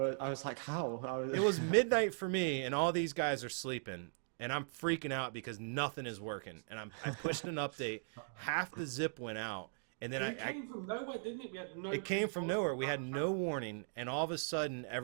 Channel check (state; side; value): silent; left; digital silence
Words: I was like, how? It was midnight for me, and all these guys are sleeping, and I'm freaking out because nothing is working. And I pushed an update, half the zip went out, and then It came from nowhere, didn't it? We had no it came from nowhere. We had no warning, and all of a sudden